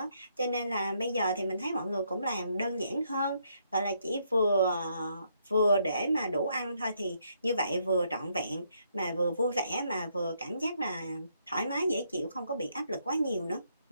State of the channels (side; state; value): both; inverted; correlation -0.73